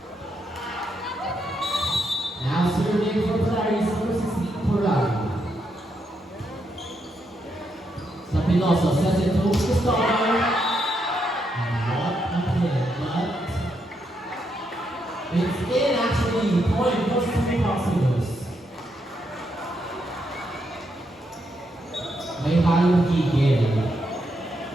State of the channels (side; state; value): both; normal; correlation 0.80